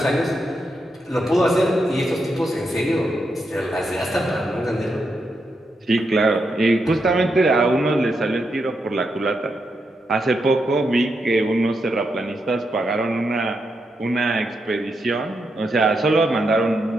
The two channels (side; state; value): both; normal; correlation 0.83